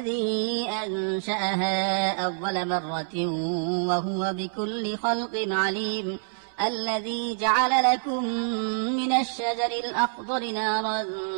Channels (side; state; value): left; silent; 60 dB below the other